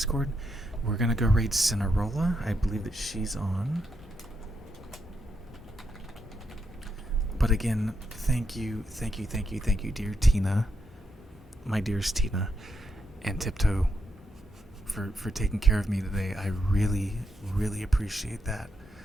We're gonna go raid Cinerola. I believe that she's on. But again, thank you, dear Tina, my dearest Tina, and Tiptoe for taking care of me today. I really, really appreciate that.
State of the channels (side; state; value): both; normal; correlation 0.81